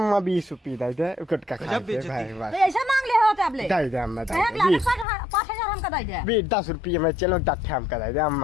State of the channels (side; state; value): right; drops out; at 5.1 s